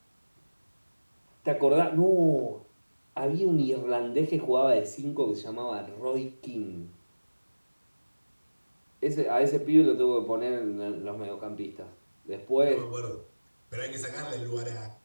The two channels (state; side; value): inverted; both; correlation -1.00